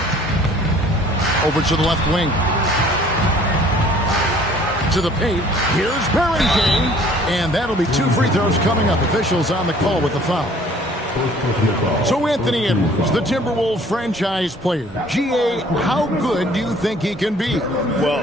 Over to the left wing. To the paint. Here's Barrington. And that'll be 2 free throws coming up. Officials on the call with the foul. So Anthony Edwards, the Timberwolves franchise player. GA, how good do you think he can be?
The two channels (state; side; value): normal; both; correlation 0.54